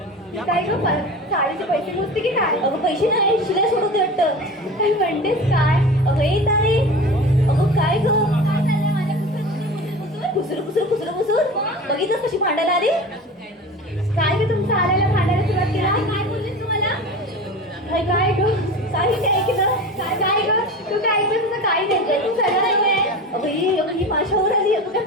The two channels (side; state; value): both; normal; correlation 0.33